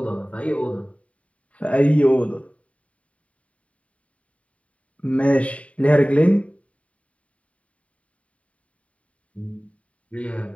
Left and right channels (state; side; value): late; right; 0.066 ms